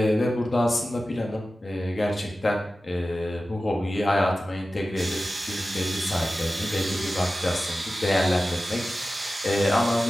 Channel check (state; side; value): normal; both; correlation 0.95